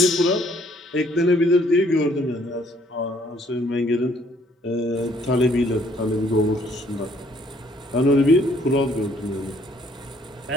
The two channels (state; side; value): normal; both; correlation 0.64